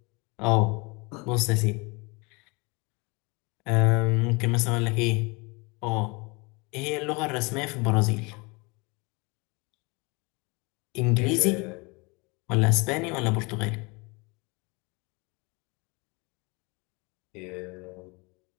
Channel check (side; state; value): right; quieter; 28.0 dB